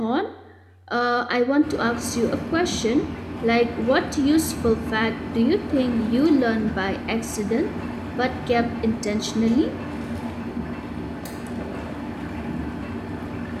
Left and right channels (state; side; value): identical; both; correlation 1.00